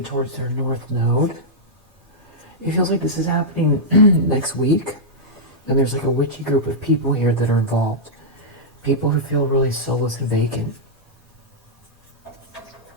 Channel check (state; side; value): normal; both; correlation -0.09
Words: towards their north node. It feels like this is happening next week. And there's like a witchy group of people here that are involved. People who feel really soulless and vacant.